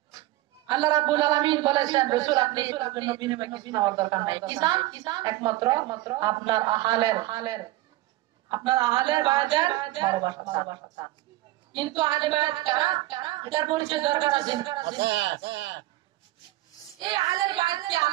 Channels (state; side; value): quieter; left; 17.5 dB